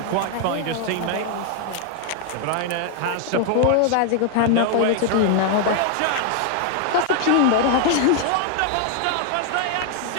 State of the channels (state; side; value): different; both; correlation 0.00